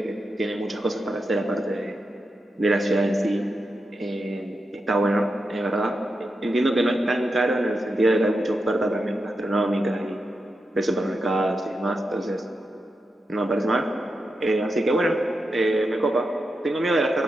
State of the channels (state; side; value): normal; both; correlation 0.88